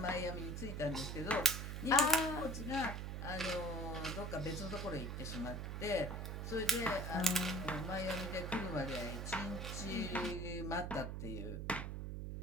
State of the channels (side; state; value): right; noise; hum, 4 dB below the sound